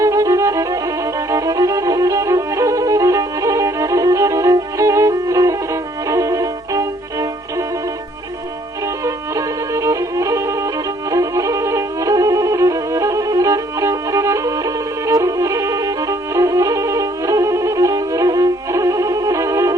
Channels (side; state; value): both; normal; correlation 0.63